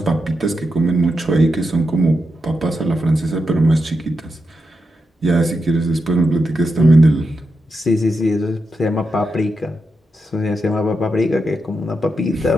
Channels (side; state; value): both; normal; correlation 0.86